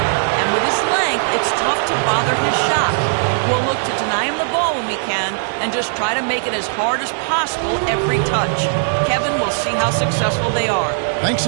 And with his length, it's tough to bother his shot. We'll look to deny him the ball when we can and just try to make it as hard as possible every touch. Kevin, we'll see how successful they are. Thanks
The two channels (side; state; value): left; silent; 67 dB below the other